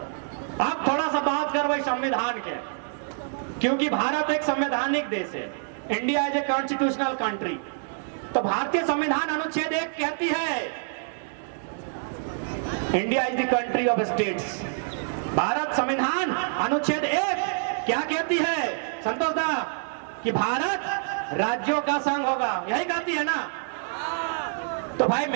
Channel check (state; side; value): silent; left; digital silence